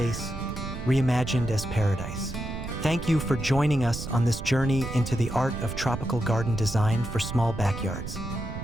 reimagined as paradise. Thank you for joining us on this journey into the art of tropical garden design for small backyards.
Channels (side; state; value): right; noise; rumble, 8 dB below the sound